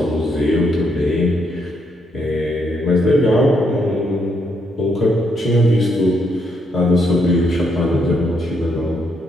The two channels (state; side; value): normal; both; correlation 0.76